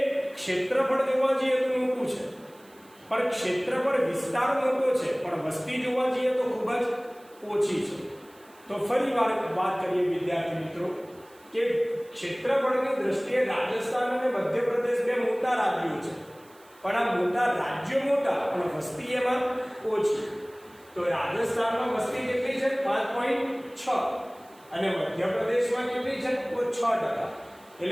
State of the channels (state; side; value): noise; right; hiss, 28 dB below the sound